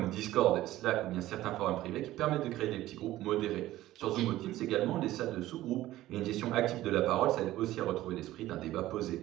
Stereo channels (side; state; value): left; quieter; 15.3 dB